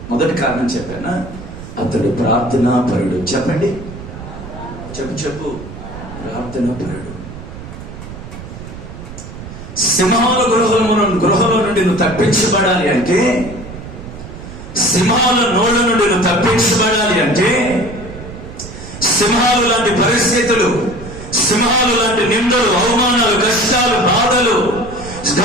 మొదటి కారణం చెప్పానా, అతడు ప్రార్థనా పరుడు. చెప్పండి, చెప్పు ప్రార్థనా పరుడు. సింహాల గృహంలో నుండి నువ్వు తప్పించబడాలి అంటే, సింహాల నోళ్ళ నుండి నువ్వు తప్పించబడాలి అంటే, సింహాలు లాంటి పరిస్థితులు, సింహాలు లాంటి నిందలు, అవమానాలు, కష్టాలు, బాధలు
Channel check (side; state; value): right; noise; rumble, 13 dB below the sound